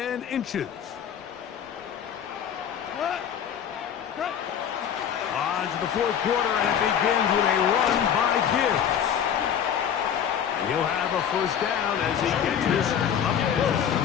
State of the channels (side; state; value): right; quieter; 8.7 dB